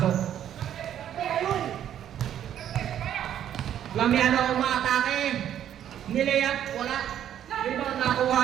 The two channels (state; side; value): quieter; left; 10.4 dB